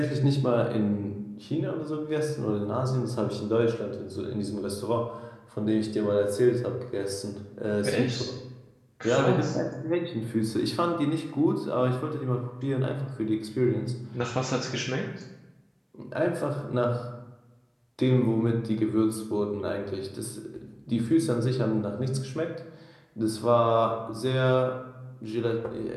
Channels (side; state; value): both; identical; correlation 1.00